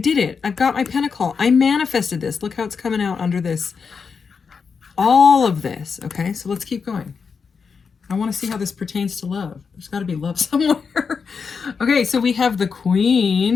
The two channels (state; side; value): quieter; right; 5.6 dB